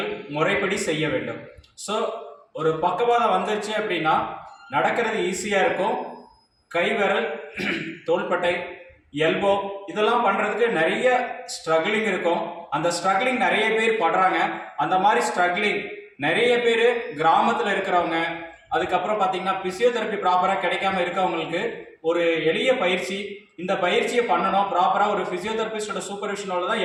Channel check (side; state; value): both; identical; correlation 1.00